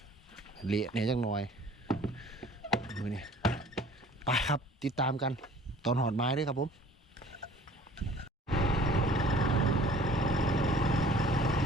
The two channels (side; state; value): both; normal; correlation 0.50